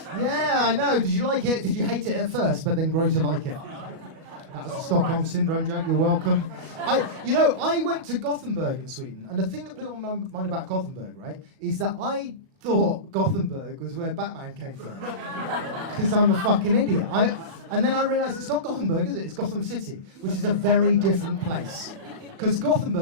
Yeah, I know. Did you like it? Did you hate it at first, but then grow to like it? That was a Stockholm syndrome joke. You're welcome. I went to Gothenburg in Sweden, and the thing that blew my mind about Gothenburg, right, is that I thought Gothenburg was where Batman came from, because I'm a fucking idiot. And then I realised it's not Gothenburg, is it? It's Gotham City, which is a very different place. Because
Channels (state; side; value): late; left; 37 ms